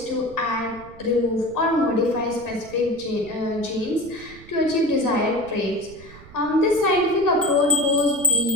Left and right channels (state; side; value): noise; right; rumble, 20 dB below the sound